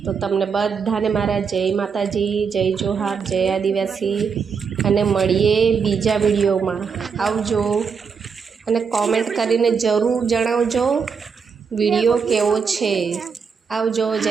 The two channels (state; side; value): quieter; left; 5.9 dB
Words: તો તમને બધાને મારા જય માતાજી, જય જોહાર, જય આદિવાસી. અને મળીએ બીજા વિડીયોમાં. આવજો અને કોમેન્ટ કરીને જરૂર જણાવજો વિડીયો કેવો છે. આવજો.